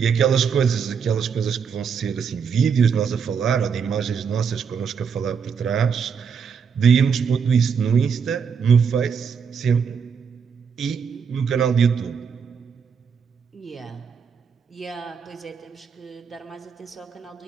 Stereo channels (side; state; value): left; quieter; 6.5 dB